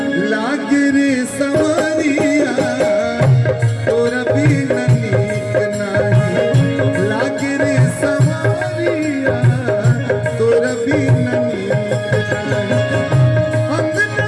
लागे रे सवरिया तोरा बीन नीक नाही लागे रे सवरिया तोरा बीन नीक नाही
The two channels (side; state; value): both; identical; correlation 1.00